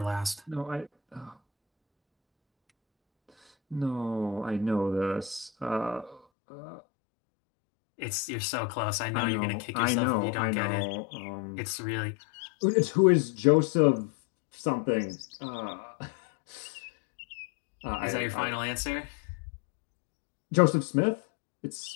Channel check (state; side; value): drops out; right; at 6.2 s